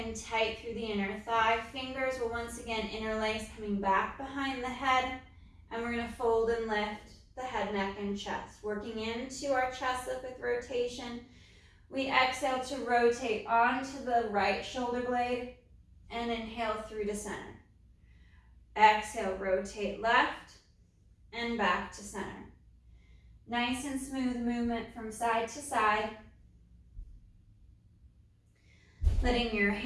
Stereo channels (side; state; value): both; identical; correlation 1.00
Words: tight through the inner thigh. Fingers will once again interlace, coming back behind the head, and we're gonna fold and lift the head, neck, and chest. Working into our chest lift with rotation. We exhale to rotate onto the right shoulder blade and inhale through to center. Exhale, rotate left and back to center. Nice and smooth movement from side to side. Letting your